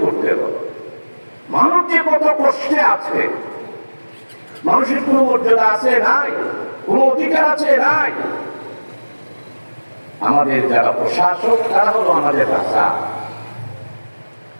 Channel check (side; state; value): both; inverted; correlation -1.00